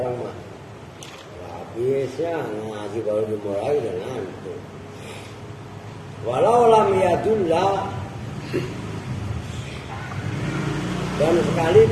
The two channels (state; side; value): identical; both; correlation 1.00